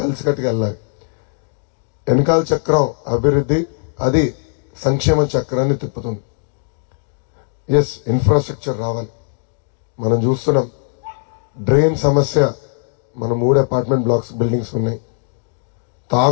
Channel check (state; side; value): silent; right; 67 dB below the other